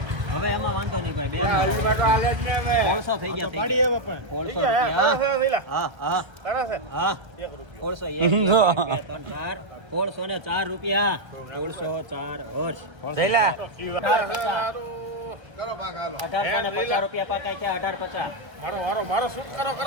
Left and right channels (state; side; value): late; left; 1.3 ms